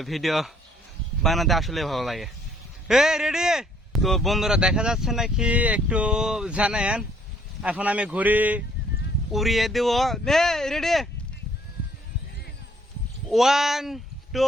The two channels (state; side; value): normal; both; correlation 0.63